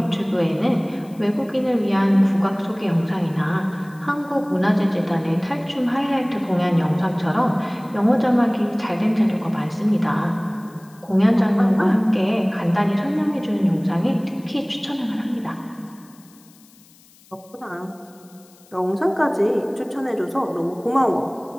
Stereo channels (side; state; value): left; noise; hiss, 28 dB below the sound